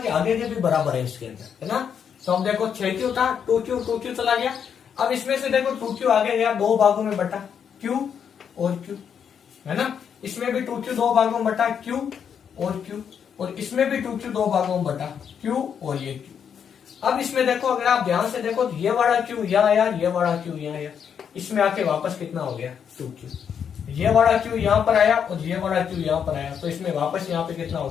कि आगे के भी बराबर है इसके अंदर, है ना। तो हम देखो 6Q था, 2Q चला गया। अब इसमें से देखो 2Q आगे गया, 2 भागों में बटा, Q और Q, है ना। इसमें भी 2Q 2 भागों में बटा, Q और Q, और इसमें भी 2Q 2 भागों में बटा, Q और ये Q। अब इसमें देखो, अगर आप ध्यान से देखो तो ये वाला Q यहाँ आया, ये वाला Q यहाँ आया, इसमें आके वापस कितना हो गया, 2Q। ये वाला Q यहाँ पर आया और ये वाला Q यहाँ पर आया, तो इसमें वापस यहाँ पे कितना हो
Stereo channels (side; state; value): right; quieter; 7.7 dB